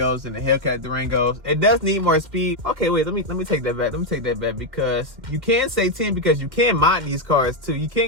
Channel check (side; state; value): left; late; 2.3 ms